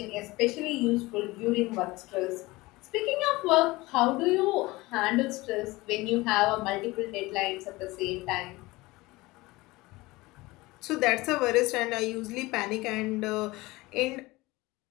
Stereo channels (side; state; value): right; quieter; 21.1 dB